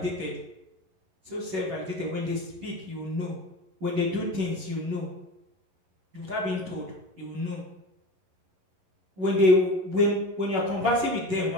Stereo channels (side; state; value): left; late; 11 ms